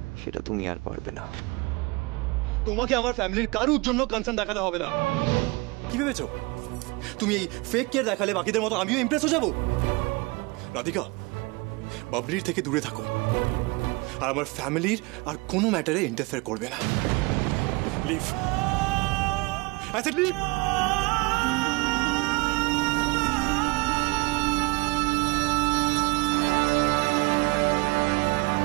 সেটা তুমি আর পারবে না। তোমাকে আমার ফ্যামিলির কারোর জন্য কনসার্ন দেখাতে হবে না। কি ভেবেছো তুমি এই ফেক কেয়ার দেখালে বাকিদের মতো আমিও ইমপ্রেস হয়ে যাব? রাধিকা, বাবলির থেকে দূরে থাকো, আর আমার ফ্যামিলির আর কোনো ম্যাটারে ইন্টারফেয়ার করবে না। Leave, I said leave.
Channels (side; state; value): left; quieter; 25.4 dB